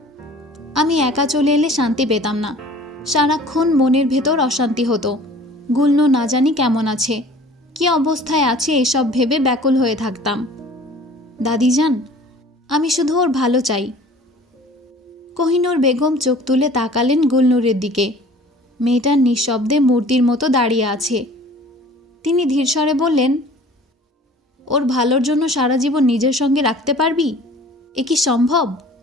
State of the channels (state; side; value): normal; both; correlation 0.47